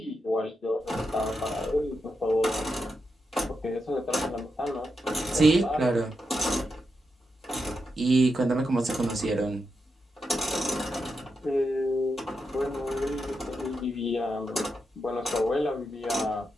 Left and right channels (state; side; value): normal; both; correlation 0.86